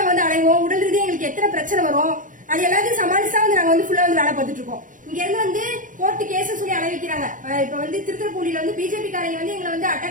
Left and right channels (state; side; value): late; left; 0.38 ms